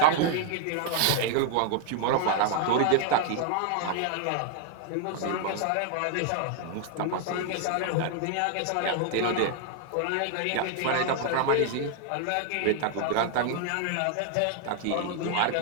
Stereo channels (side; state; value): both; different; correlation 0.00